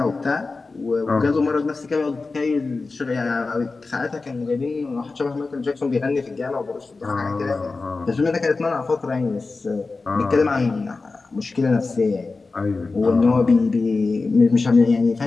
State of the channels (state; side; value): quieter; right; 3.9 dB